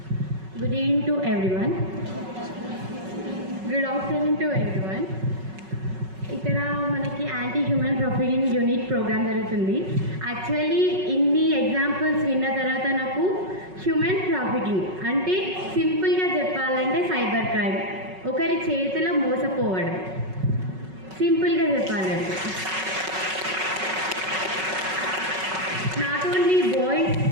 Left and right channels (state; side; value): late; left; 5.4 ms